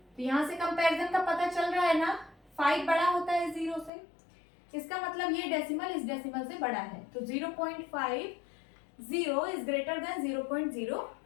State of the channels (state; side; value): drops out; right; at 3.9 s